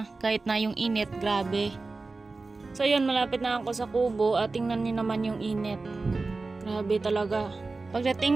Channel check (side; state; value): left; quieter; 3.7 dB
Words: Kahit na yung init, grabe. So ayun, malapit na ako sa kubo at tingnan niyo naman yung init. Grabe talaga.